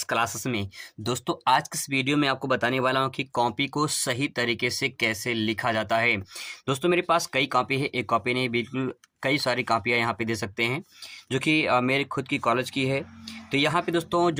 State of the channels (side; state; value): both; identical; correlation 1.00